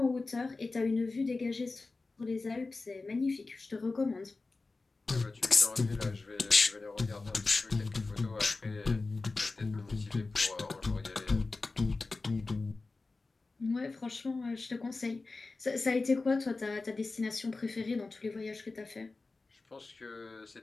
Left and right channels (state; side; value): quieter; right; 3.6 dB